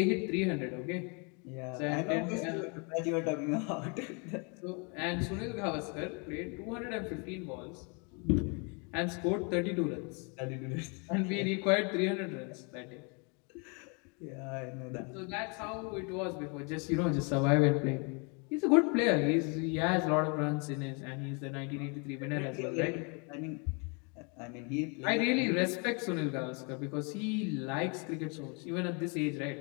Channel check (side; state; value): right; quieter; 34.3 dB